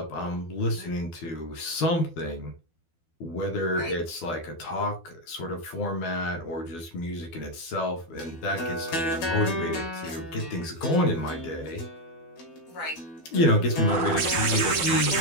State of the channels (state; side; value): late; right; 12 ms